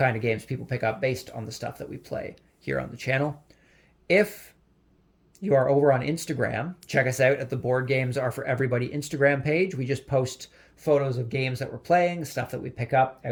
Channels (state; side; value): identical; both; correlation 1.00